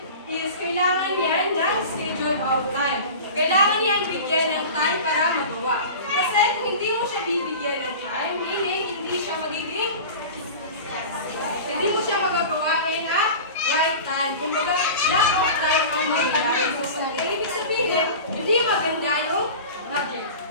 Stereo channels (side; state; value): both; inverted; correlation -0.34